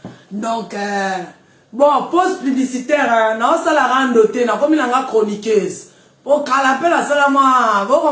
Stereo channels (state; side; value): identical; both; correlation 1.00